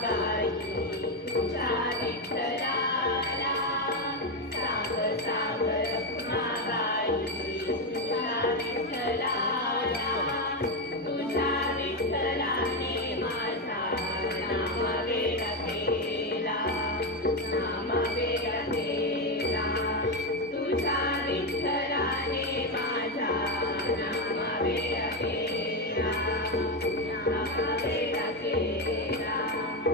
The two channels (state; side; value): normal; both; correlation 0.09